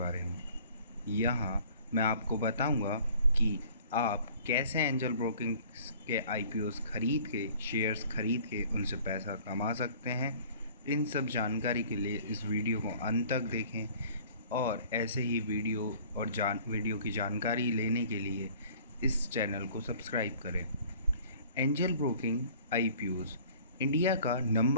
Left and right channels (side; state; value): both; inverted; correlation -0.51